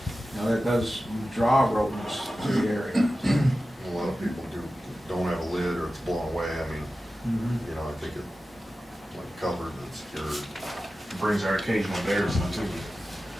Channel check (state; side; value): normal; both; correlation 0.94